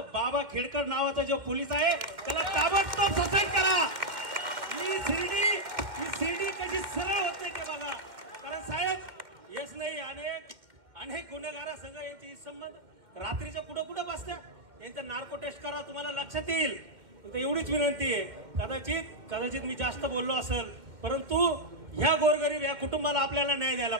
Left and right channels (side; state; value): left; late; 2.1 ms